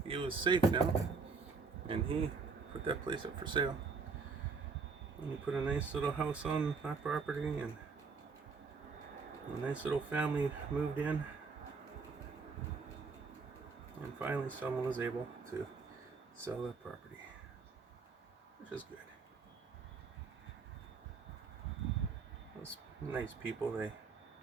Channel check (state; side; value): quieter; left; 4.8 dB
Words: he was safe now, and he put that place up for sale. We put a nice little house on that property, and a nice little family moved in. And finally someone was able to sell that property, which is good. Those nice people, they